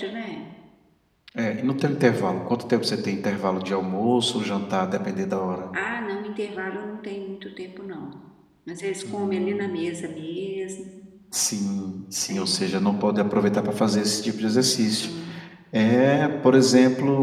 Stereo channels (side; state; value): both; identical; correlation 1.00